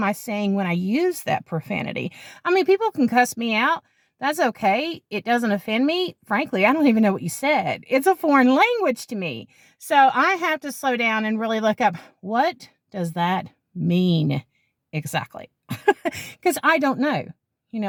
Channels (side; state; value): both; identical; correlation 1.00